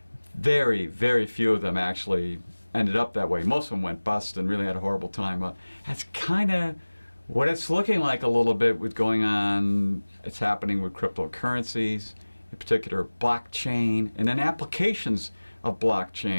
Very, very few of them actually ended up that way. Most of them went bust and really had a horrible time. That's kind of what it's looking like a little bit with going on. It's happening with cryptocurrencies, in particular blockchain, and then applications of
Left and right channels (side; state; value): both; inverted; correlation -1.00